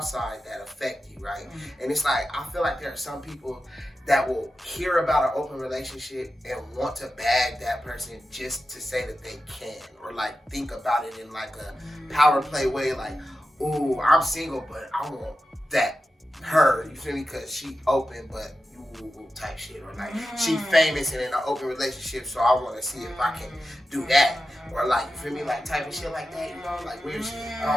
that affect you, right? And it's like, I feel like there are some people that will hear about an open relationship and want to bag that person just to say that they can, or like think about it in like a power play way, like, ooh, I'm single, but I want that her, you feel me? Because she open, but you type shit, or like she famous and in an open relationship, so I want to see if I can do that. Or like, you feel me, like type of shit like that, you know, like weird shit. I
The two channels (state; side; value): normal; both; correlation 0.92